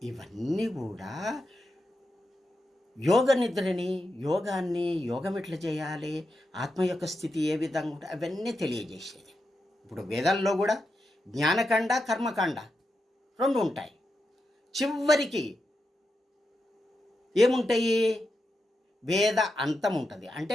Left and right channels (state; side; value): normal; both; correlation 0.87